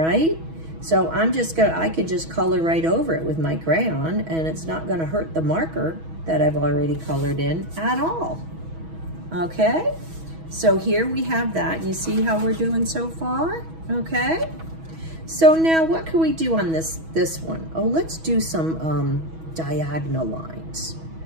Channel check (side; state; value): left; late; 6.2 ms